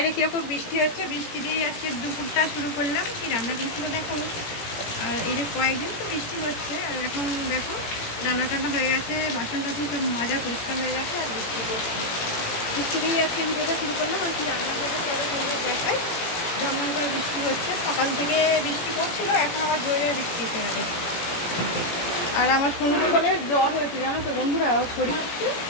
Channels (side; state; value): right; late; 17 ms